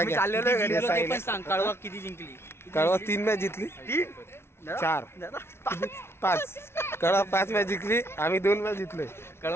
घ्या. याचा आहे ना. सांग कळवा किती जिंकली. कळवा 3 मॅच जिंकली. 4 5 कळवा 5 मॅच जिंकली. आम्ही 2 मॅच जिंकलोय.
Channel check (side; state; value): right; late; 0.12 ms